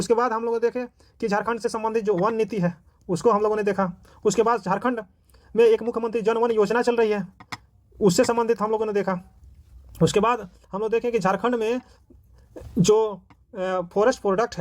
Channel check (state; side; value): identical; both; correlation 1.00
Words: बाद हम लोग देखे कि झारखंड से संबंधित जो वन नीति है उसको हम लोगों ने देखा। उसके बाद झारखंड में एक मुख्यमंत्री जन वन योजना चल रही है, उससे संबंधित हम लोगों ने देखा। उसके बाद हम लोग देखें कि झारखंड में जो फॉरेस्ट प्रोडक्ट